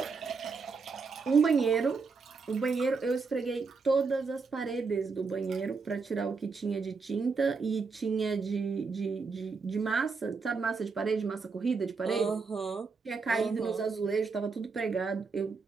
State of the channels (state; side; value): quieter; left; 4.7 dB